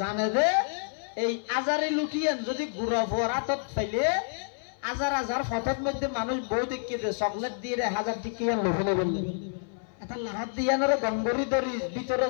দে এই আজারি লুটিয়েন যদি গুড়া ভুয়ার হাতত ফেলে হাজার হাজার ফটোর মধ্যে মানুষ বউ দেখিয়ে দে চকলেট দিয়ে 1000 টিকিয়ান লোভনে বললে এটা লাহাত দিয়ানোর গঙ্গরি ধরি ভিতরে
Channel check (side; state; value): right; silent; 57 dB below the other